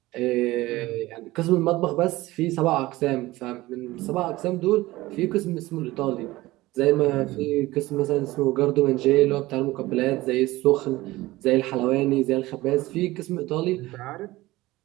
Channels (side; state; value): left; quieter; 18.6 dB